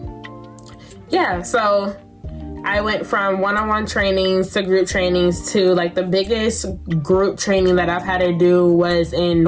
yeah, so I went from one-on-one trainings to group trainings to like the biggest group training that I've had to do was in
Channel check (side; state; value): both; identical; correlation 1.00